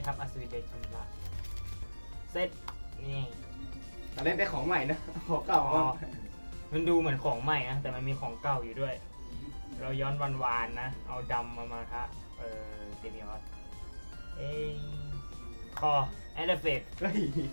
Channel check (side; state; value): both; inverted; correlation -1.00